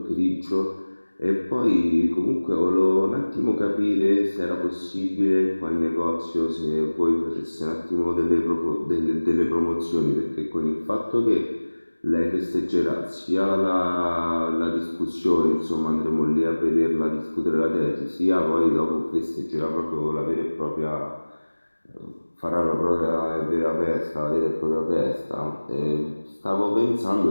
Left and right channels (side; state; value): both; inverted; correlation -1.00